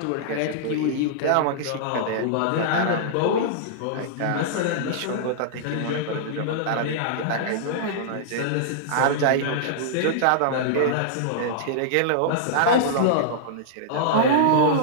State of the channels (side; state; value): both; different; correlation -0.02